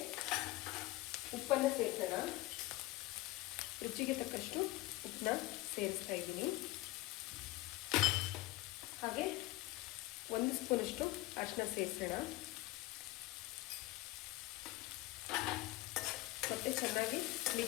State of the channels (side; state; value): right; quieter; 18.8 dB